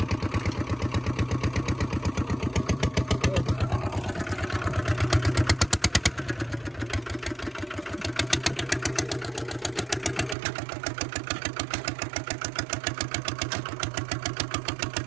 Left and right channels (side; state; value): left; drops out; at 10.4 s